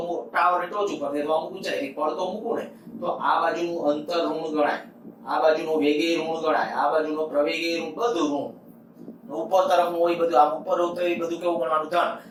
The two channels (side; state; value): both; identical; correlation 1.00